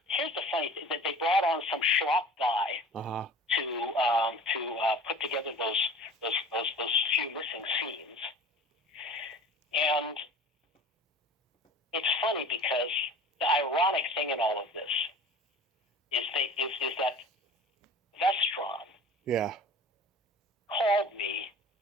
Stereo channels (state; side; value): normal; both; correlation 0.41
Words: here's the funny thing: that they brought on some schlock guy to put together those few missing scenes. And it's funny because the ironic thing in all of this is that Vestron called me